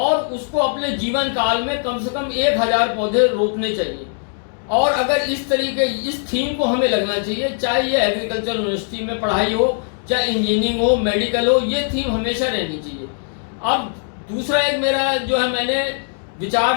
उसको अपने जीवन काल में कम से कम 1000 पौधे रोपने चाहिए। और अगर इस तरीके इस थीम को हमें लगना चाहिए, चाहे ये एग्रीकल्चर यूनिवर्सिटी में पढ़ाई हो, चाहे इंजीनियरिंग हो, मेडिकल हो, ये थीम हमेशा रहनी चाहिए। अब दूसरा एक मेरा जो है मैंने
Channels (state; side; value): silent; right; digital silence